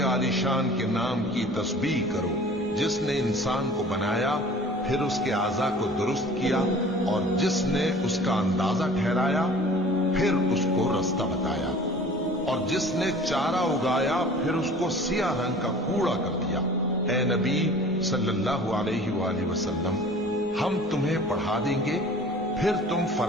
आलिशान के नाम की तस्बीह करो, जिसने इंसान को बनाया, फिर उसके आज़ा को दुरुस्त किया, और जिसने उसका अंदाजा ठहराया, फिर उसको रास्ता बताया, और जिसने चारा उगाया, फिर उसको सियाह रंग का कूड़ा कर दिया। ए नबी सल्लल्लाहु अलैहि वसल्लम, हम तुम्हें पढ़ा देंगे, फिर तुम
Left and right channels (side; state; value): left; noise; rumble, 28 dB below the sound